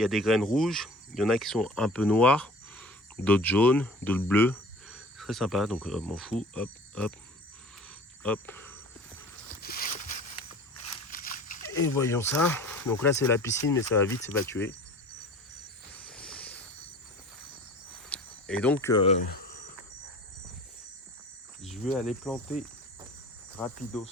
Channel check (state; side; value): normal; both; correlation 0.43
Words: des graines rouges, il y en a qui sont un peu noires, d'autres jaunes, d'autres bleues. C'est très sympa, donc m'en fous. Hop, hop, hop. Et voyons ça. Donc là, c'est la piscine, mais ça va vite s'évacuer. Et donc, je vais aller planter rapidos.